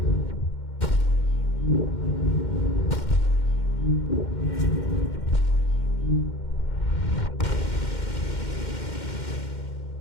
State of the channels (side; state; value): right; late; 2.1 ms